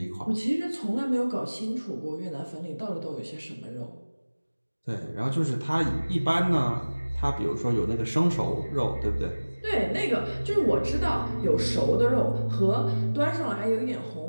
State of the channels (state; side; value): inverted; both; correlation -1.00